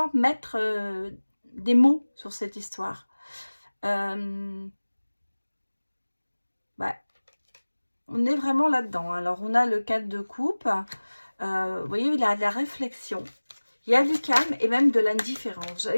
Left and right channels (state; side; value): inverted; both; correlation -1.00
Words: mettre des mots sur cette histoire. On est vraiment là-dedans. Alors, on a le 4 de coupe. Vous voyez, il y a de la réflexion. Il y a du calme et même de l'indifférence.